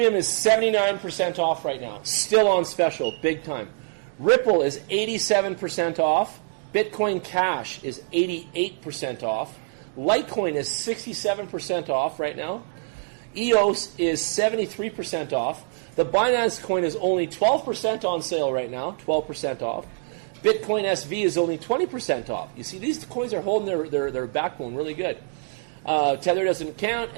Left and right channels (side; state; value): left; silent; digital silence